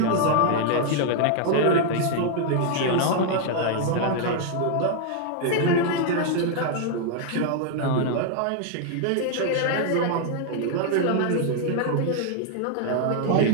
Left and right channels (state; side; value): different; both; correlation 0.00